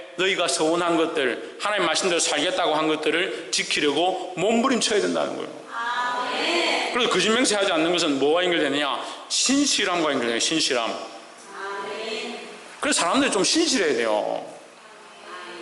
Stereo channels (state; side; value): identical; both; correlation 1.00